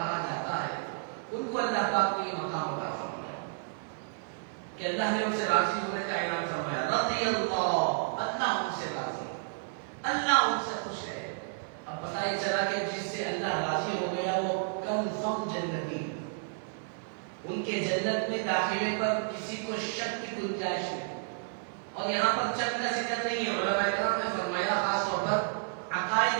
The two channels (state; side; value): silent; left; 57 dB below the other